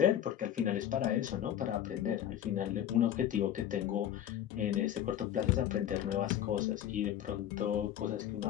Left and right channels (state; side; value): quieter; right; 10.9 dB